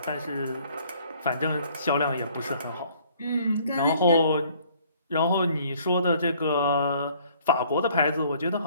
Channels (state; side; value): inverted; both; correlation -0.59